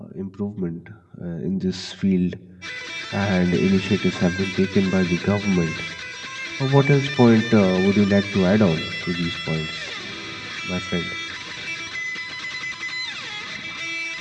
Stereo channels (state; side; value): identical; both; correlation 1.00